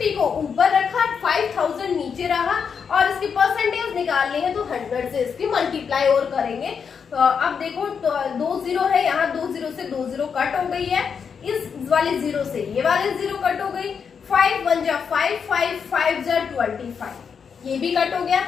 को ऊपर रखा, 5000 नीचे रहा, और इसकी परसेंटेज निकालनी है तो 100 से इसकी मल्टीप्लाई और करेंगे। अब देखो 2 0 है यहाँ, 2 0 से 2 0 कट हो गई है, इस वाले जीरो से ये वाले जीरो कट हो गई, 5 1 जा 5, 5 5 जा 25, ये भी कट हो गया।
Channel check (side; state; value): right; quieter; 6.5 dB